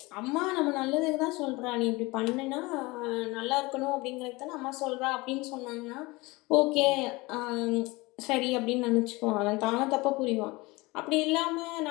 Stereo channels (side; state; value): right; quieter; 23.0 dB